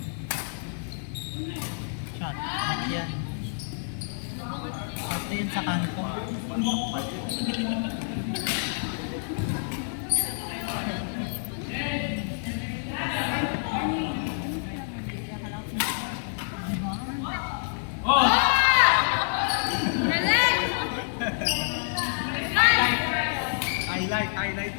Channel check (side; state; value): right; silent; digital silence